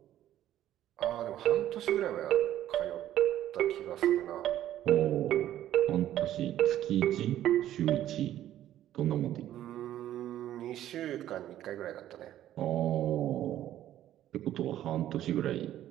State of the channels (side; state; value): left; quieter; 12.5 dB